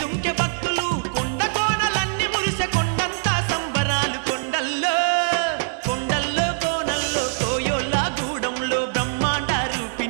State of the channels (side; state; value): left; silent; digital silence